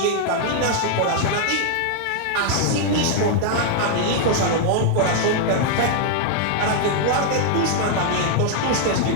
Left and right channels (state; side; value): different; both; correlation 0.00